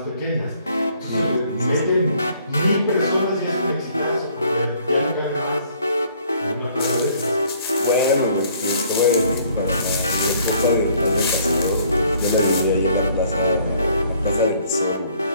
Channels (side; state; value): both; inverted; correlation -0.61